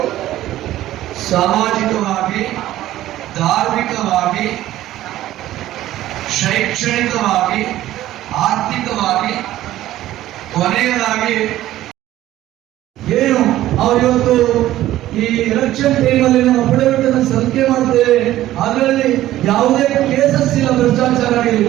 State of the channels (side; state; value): left; quieter; 14.3 dB